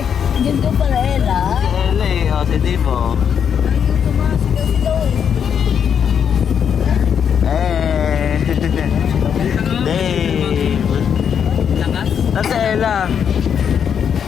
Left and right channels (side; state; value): right; quieter; 7.8 dB